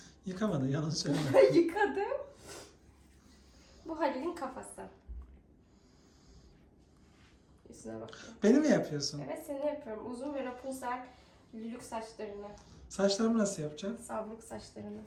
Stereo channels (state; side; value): identical; both; correlation 1.00